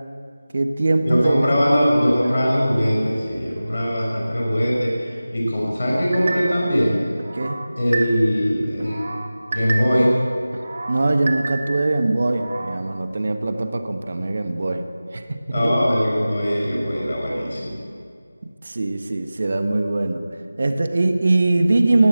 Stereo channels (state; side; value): inverted; both; correlation -0.96